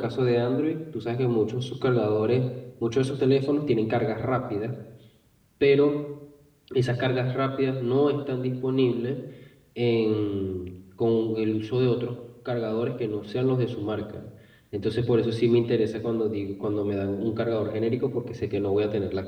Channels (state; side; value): identical; both; correlation 1.00